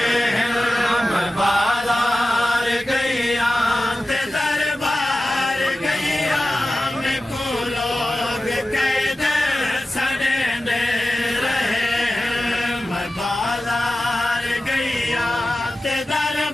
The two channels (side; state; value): both; normal; correlation 0.95